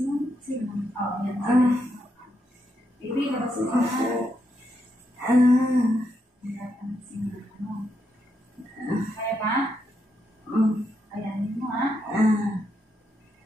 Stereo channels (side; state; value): both; normal; correlation 0.81